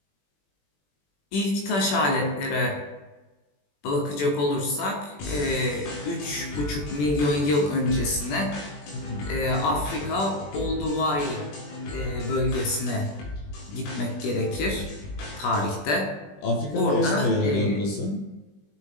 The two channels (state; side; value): late; right; 21 ms